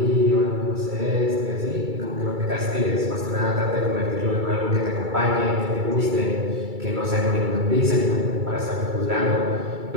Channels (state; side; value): late; left; 2.3 ms